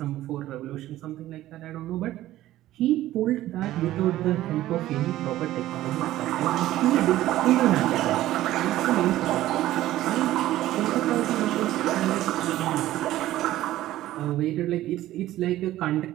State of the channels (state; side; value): quieter; left; 14.7 dB